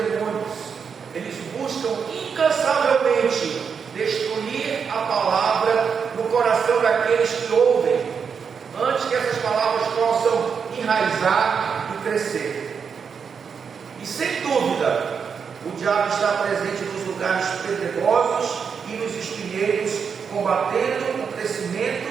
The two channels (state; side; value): quieter; left; 6.4 dB